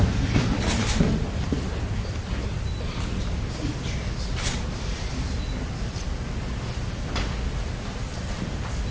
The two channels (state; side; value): identical; both; correlation 1.00